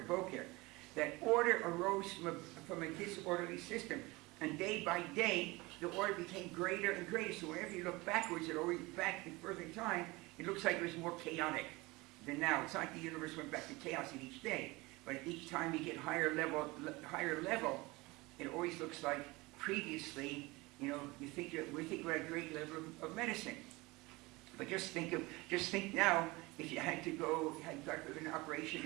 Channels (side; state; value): left; quieter; 22.7 dB